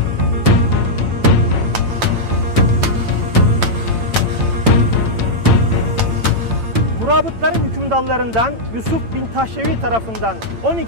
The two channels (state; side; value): late; left; 8.9 ms